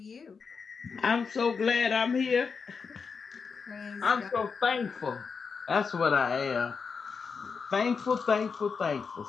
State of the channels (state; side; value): quieter; right; 5.5 dB